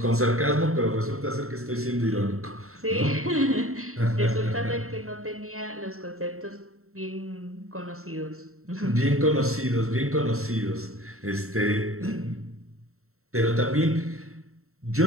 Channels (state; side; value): late; left; 0.63 ms